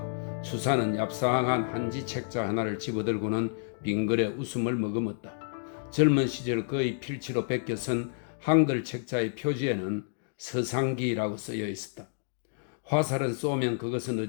수사는 얍상한 한지 책자 하나를 집어들고는 빙그레 웃음을 머금었다. 젊은 시절 거의 필치로 베껴 쓴 한글 책자의 표지에는 서상기라고 쓰여 있었다. 화살은 쏘면 그것은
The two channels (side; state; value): right; silent; digital silence